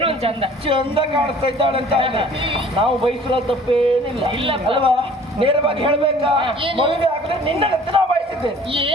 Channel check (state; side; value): normal; both; correlation 0.51